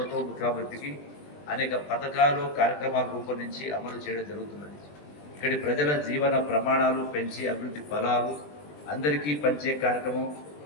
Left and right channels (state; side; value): late; right; 20 ms